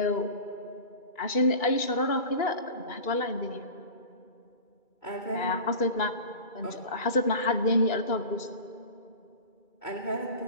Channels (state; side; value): late; right; 2.3 ms